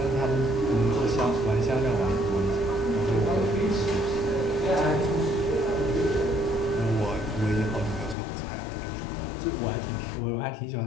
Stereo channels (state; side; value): drops out; right; at 8.2 s